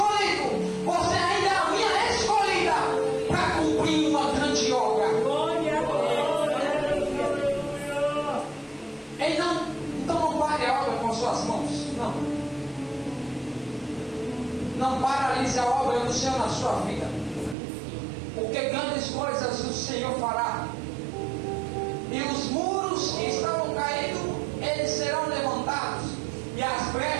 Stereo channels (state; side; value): drops out; left; at 17.6 s